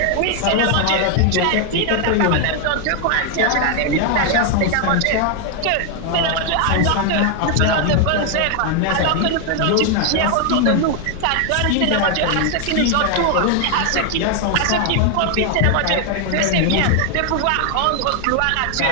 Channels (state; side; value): different; both; correlation 0.00